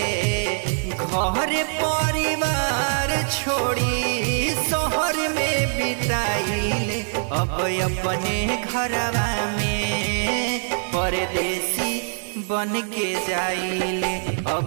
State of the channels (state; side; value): silent; left; digital silence